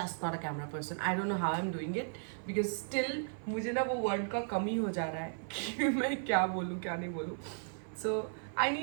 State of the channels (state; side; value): silent; left; 54 dB below the other